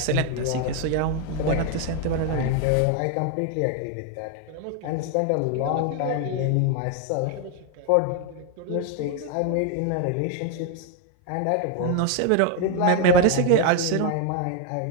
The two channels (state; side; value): different; both; correlation 0.01